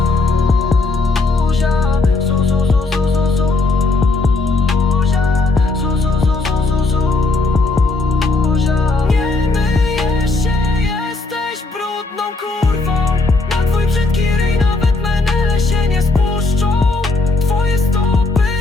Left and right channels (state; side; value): quieter; right; 3.4 dB